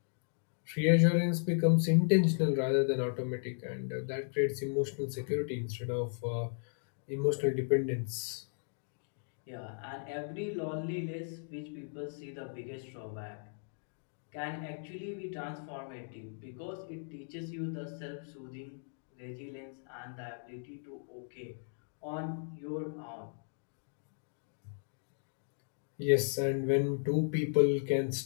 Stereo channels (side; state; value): right; silent; digital silence